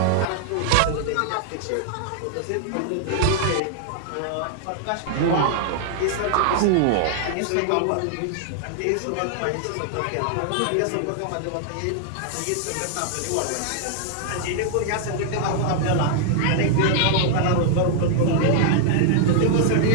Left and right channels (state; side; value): different; both; correlation -0.01